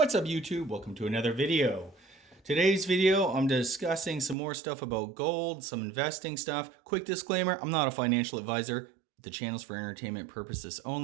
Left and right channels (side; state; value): left; drops out; at 4.4 s